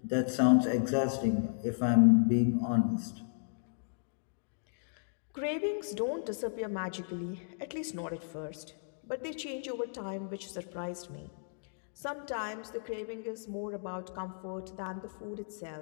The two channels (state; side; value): silent; right; digital silence